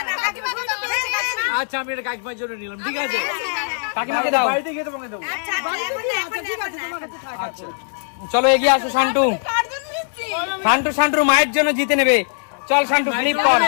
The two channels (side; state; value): right; silent; digital silence